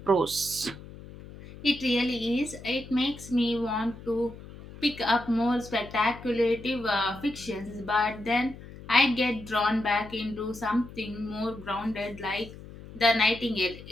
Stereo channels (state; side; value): noise; left; hum, 16 dB below the sound